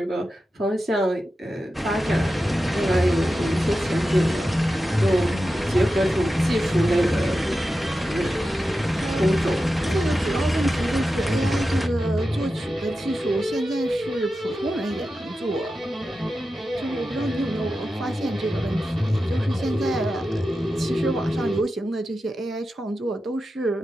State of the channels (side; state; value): both; normal; correlation 0.91